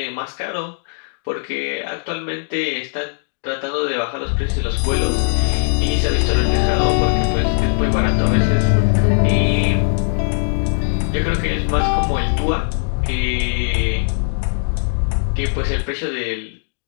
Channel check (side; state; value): right; silent; digital silence